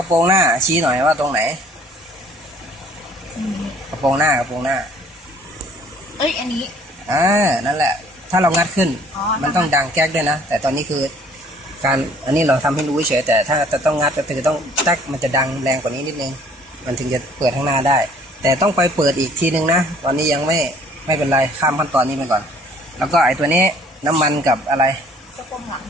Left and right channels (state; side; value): normal; both; correlation 0.56